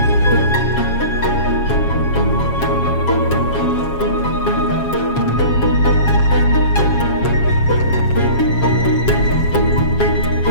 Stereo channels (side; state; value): right; late; 7.3 ms